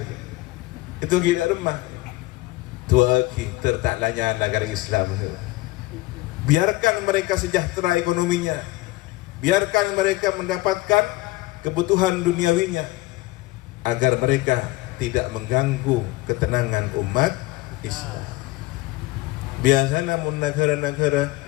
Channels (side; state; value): right; quieter; 19.8 dB